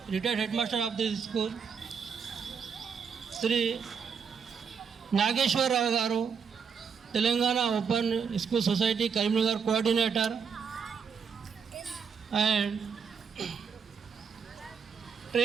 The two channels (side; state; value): left; quieter; 6.4 dB